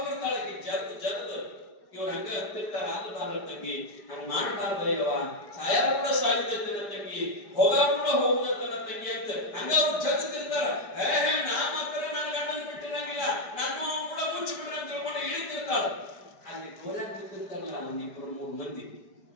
ಜರ್ದ್ ಇವ್ರು ಹಂಗ ಹತ್ತಿರ್ತಾರ. ಆಗಬಾರ್ದ ತಂಗಿ, ಹಂಗ ಮಾಡಬಾರ್ದ ಇವ ಸಾಯ ಕೂಡ ಸಾಯುದತ್ತನ ತಂಗಿ, ಹೋಗ ಕೂಡ ಹೋಗುದತ್ತನ ತಂಗಿ ಅಂತ ಹಂಗ ಅವ್ರು ಜಗತ್ತಿರ್ತಾರ. ನಾ ಮಾತ್ರ ನನ್ನ ಗಂಡನ ಬಿಟ್ಟಿರಂಗಿಲ್ಲ, ನಾನು ಕೂಡ ಮುಚ್ಚಿ ಬಿಡ್ರಿ ಅಂತ ತಿಳ್ಕೊಂಡು ಇಳಿತಿರ್ತಾಳ. ಅಲ್ಲಿ ಗೋರ್ಯಾಗ ನಿಂತಿರ್ತಾರಲ್ಲ ಒಂದ್ 2-3 ಮಂದಿ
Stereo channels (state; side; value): late; right; 4.9 ms